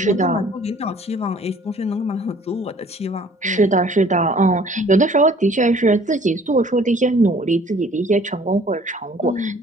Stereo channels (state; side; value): normal; both; correlation 0.54